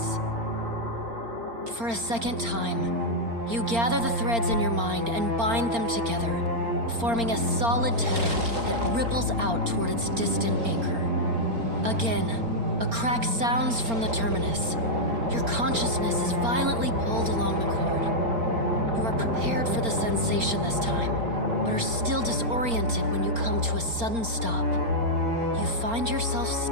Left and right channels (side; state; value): left; late; 4.3 ms